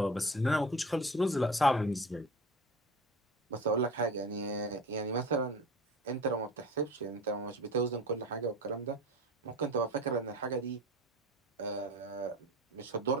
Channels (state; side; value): normal; both; correlation 0.35